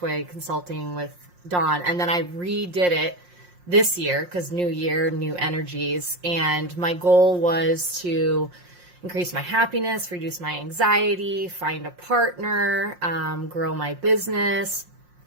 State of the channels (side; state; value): left; late; 5.6 ms